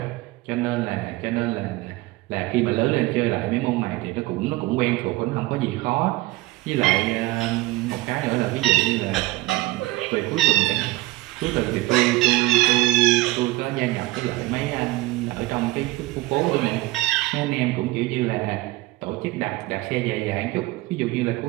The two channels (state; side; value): quieter; left; 19.0 dB